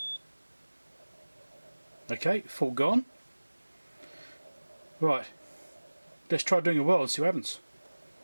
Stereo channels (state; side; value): inverted; both; correlation -1.00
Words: Okay, fault gone. Right, let's try doing a weld and see what happens.